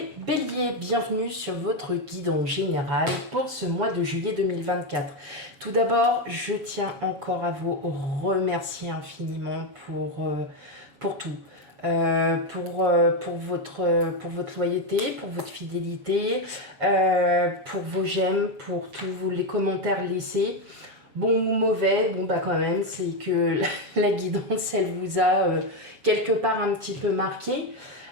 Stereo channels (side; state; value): left; late; 7.3 ms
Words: béliers. Bienvenue sur votre guide en général pour ce mois de juillet 2024. Tout d'abord, je tiens encore à vous remercier infiniment pour tout. Pour votre loyauté, pour votre fidélité, pour vos j'aime, pour tous les commentaires laissés. Bon ou mauvais, bon bah quand même, c'est que la guidance, elle vous a quelque part un petit peu marqué.